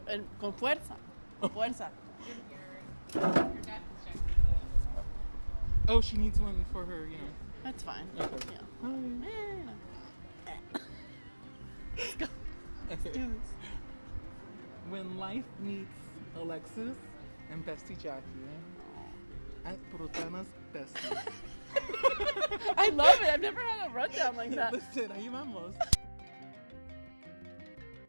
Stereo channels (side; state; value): both; inverted; correlation -1.00